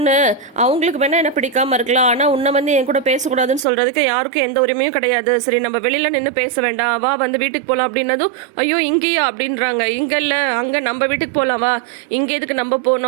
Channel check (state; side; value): drops out; left; at 3.7 s